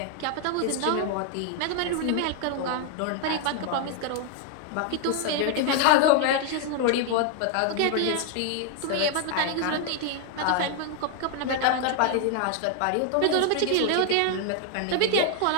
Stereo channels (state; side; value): different; both; correlation 0.00